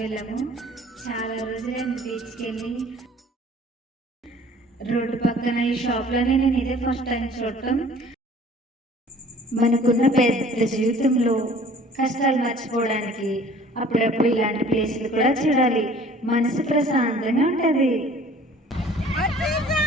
వెళ్ళాము. చాలా రోజులైంది బీచ్కి వెళ్ళి. రోడ్డు పక్కన ఈ షాప్లోనే నేను ఇదే ఫస్ట్ టైం చూడటం. మనకున్న పెద్ద జీవితంలో కష్టాలు మర్చిపోవడానికి అప్పుడప్పుడు ఇలాంటి ప్లేసులు కూడా చూడాలి. మనసు ప్రశాంతంగా ఉంటుంది.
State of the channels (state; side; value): normal; both; correlation 0.50